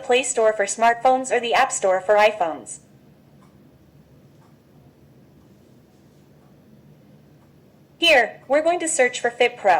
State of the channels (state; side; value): identical; both; correlation 1.00